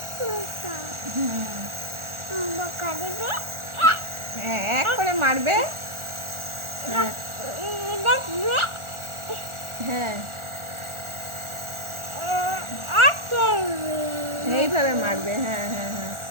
হ্যাঁ, এক করে মারবে। হ্যাঁ, এইভাবে মারবে। হ্যাঁ হ্যাঁ হ্যাঁ,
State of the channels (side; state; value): left; late; 1.4 ms